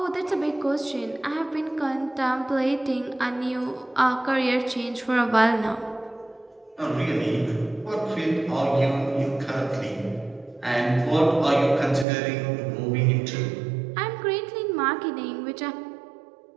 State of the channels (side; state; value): left; drops out; at 12.1 s